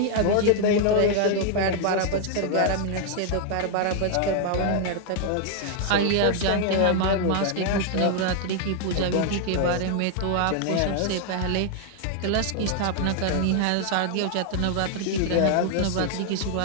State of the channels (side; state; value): both; different; correlation 0.00